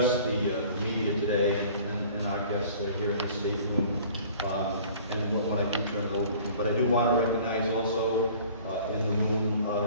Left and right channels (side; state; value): both; inverted; correlation -0.49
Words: the media today and our guests here in the state room. And when I do turn it over to them. But I do want to recognize also in the room